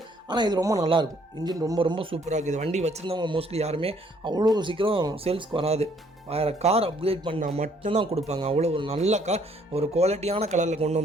ஆனால் இது ரொம்ப நல்லாயிருக்கும். இன்ஜின் ரொம்ப ரொம்ப சூப்பராக இருக்குது. வண்டி வச்சுருந்தவங்க மோஸ்ட்லி யாருமே அவ்வளோ சீக்கிரம் சேல்ஸ்க்கு வராது. வேறு கார் அப்கிரேட் பண்ணால் மட்டும்தான் கொடுப்பாங்க. அவ்வளோ ஒரு நல்ல கார், ஒரு குவாலிட்டியான கலரில் கொண்டு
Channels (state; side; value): normal; both; correlation 0.64